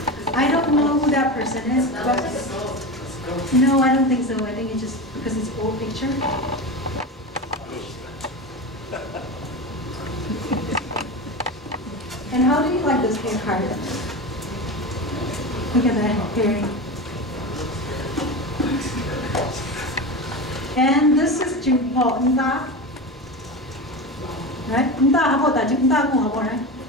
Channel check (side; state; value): both; normal; correlation 0.24